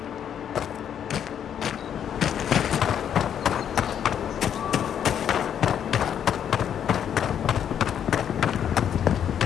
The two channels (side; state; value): right; quieter; 9.1 dB